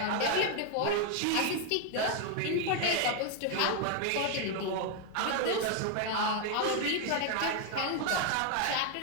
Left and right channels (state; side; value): different; both; correlation 0.00